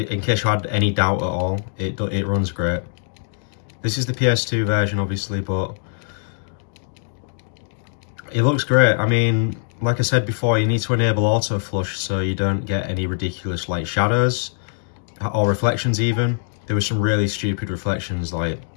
case you had any doubt at all, it runs great. This is the PS2 version, obviously, but it looks great. I mean, like I said before, you need to enable auto flush so you don't get any ridiculous like shadows or reflections even. There were some really stupid reflections like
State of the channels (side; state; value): right; silent; digital silence